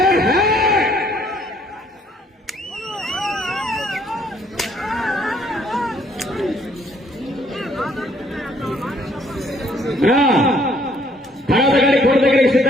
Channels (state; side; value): normal; both; correlation 0.64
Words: తర్వాత గారి కోట దగ్గరికి